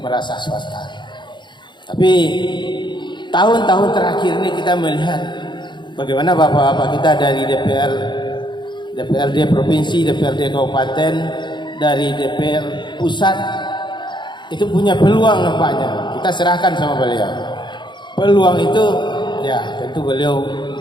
madrasah swasta. Tapi tahun-tahun terakhir ini kita melihat bagaimana bapak-bapak kita dari DPR, DPRD provinsi, DPRD kabupaten, dari DPR pusat itu punya peluang nampaknya. Kita serahkan sama beliau. Peluang itu ya tentu beliau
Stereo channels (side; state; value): right; late; 0.22 ms